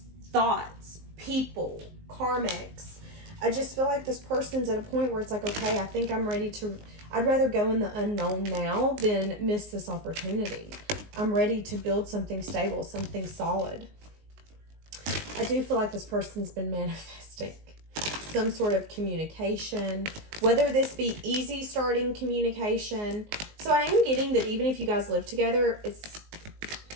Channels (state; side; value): late; left; 19 ms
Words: thoughts, people, karmics. I just feel like this person's at a point where it's like, okay, I think I'm ready to, I'd rather go in the unknown now than miss this opportunity. I'm ready to build something stable, something solid. I do feel like this person's been manifesting some sort of communication, whether this be easy starting communication. So I am getting that even if you guys live together,